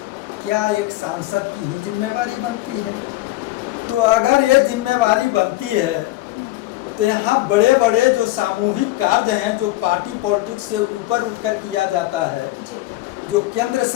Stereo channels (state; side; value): quieter; right; 17.4 dB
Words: क्या एक सांसद की ही जिम्मेवारी बनती है? तो अगर ये जिम्मेवारी बनती है तो यहाँ बड़े बड़े जो सामूहिक कार्य हैं, जो पार्टी पॉलिटिक्स से ऊपर उठकर किया जाता है, जो केंद्र